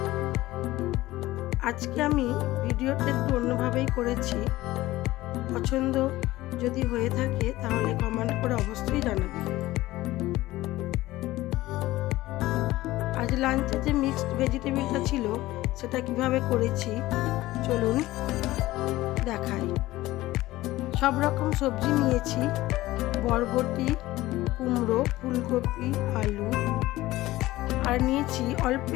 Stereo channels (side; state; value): right; quieter; 17.3 dB